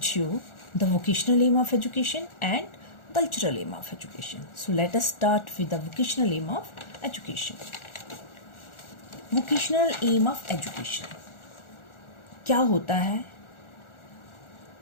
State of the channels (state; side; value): late; right; 1.4 ms